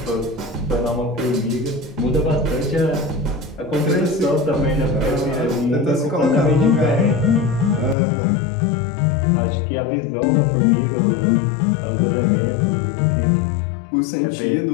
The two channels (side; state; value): right; drops out; at 8.0 s